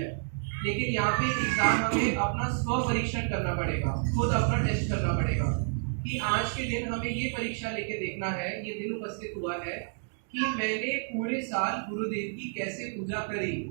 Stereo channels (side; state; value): left; silent; digital silence